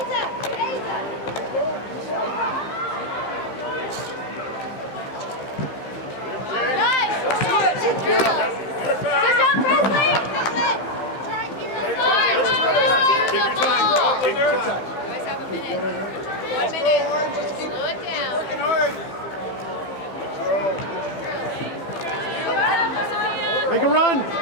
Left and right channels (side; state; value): right; late; 15 ms